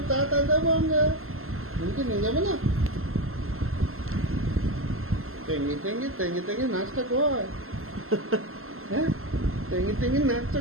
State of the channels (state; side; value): late; left; 0.62 ms